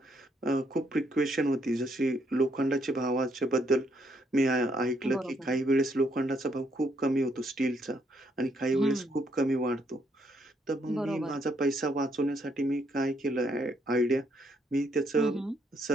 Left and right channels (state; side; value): normal; both; correlation 0.72